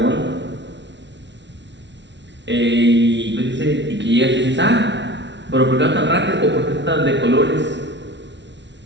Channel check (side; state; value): left; late; 0.51 ms